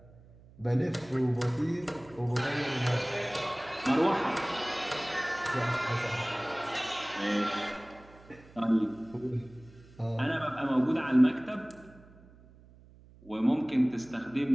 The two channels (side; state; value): right; noise; hum, 24 dB below the sound